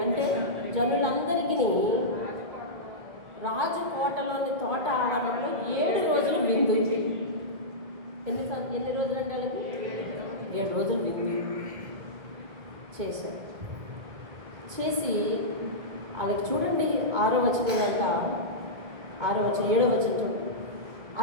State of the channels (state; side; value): late; left; 2.2 ms